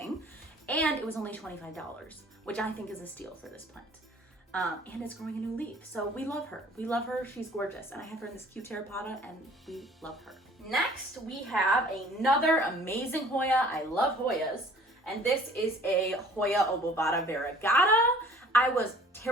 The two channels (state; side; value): normal; both; correlation 0.52